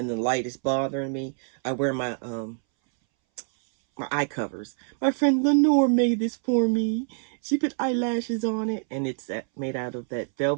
the light is bothering me, I wear my my eye covers. My friend Lenore made this for me. She put eyelashes on it, and it's made out of that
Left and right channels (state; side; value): silent; left; 61 dB below the other